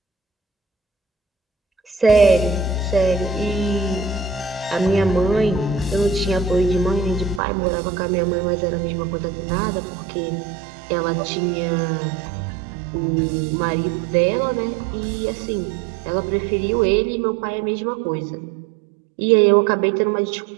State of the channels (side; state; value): left; drops out; at 7.4 s